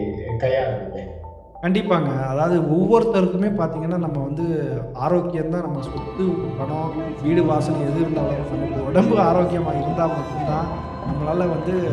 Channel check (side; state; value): both; identical; correlation 1.00